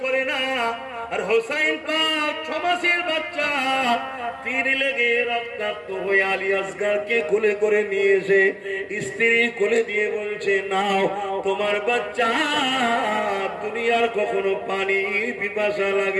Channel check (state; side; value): identical; both; correlation 1.00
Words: করে না। আর হোসাইন পাক 6 মাসের বাচ্চা, তীর লেগে রক্তাক্ত হয়ে আলী আসগরকে কোলে করে নিয়ে এসে স্ত্রী কোলে দিয়ে বলছে, নাও তোমার বাচ্চা, দুনিয়ার কখনো পানি পিপাসা